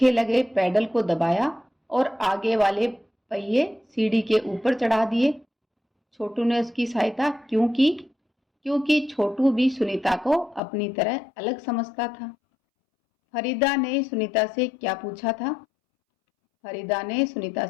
लगे पैडल को दबाया और आगे वाले पहिए सीढ़ी के ऊपर चढ़ा दिए। छोटू ने उसकी सहायता क्यों की? क्योंकि छोटू भी सुनीता को अपनी तरह अलग समझता था। फरीदा ने सुनीता से क्या पूछा था? फरीदा ने सुनीता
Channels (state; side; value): drops out; right; at 10.6 s